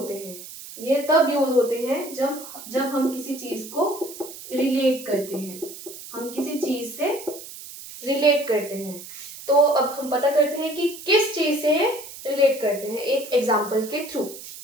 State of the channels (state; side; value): noise; right; hiss, 14 dB below the sound